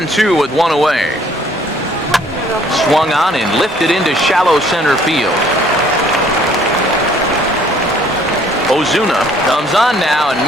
with 1 away. Swung on and lifted into shallow center field. Ozuna comes on now and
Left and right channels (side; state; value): both; normal; correlation 0.60